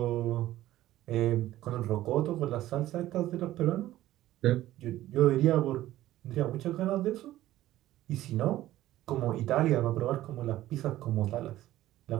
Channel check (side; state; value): left; quieter; 14.7 dB